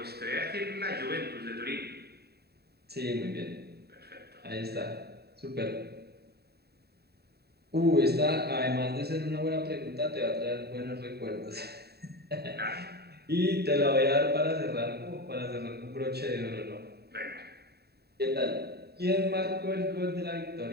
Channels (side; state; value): left; late; 0.47 ms